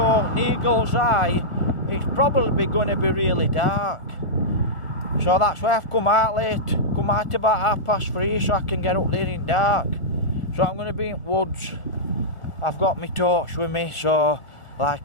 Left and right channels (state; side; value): late; right; 1.4 ms